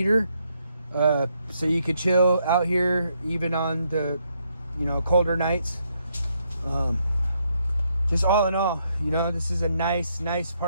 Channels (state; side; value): inverted; both; correlation -0.76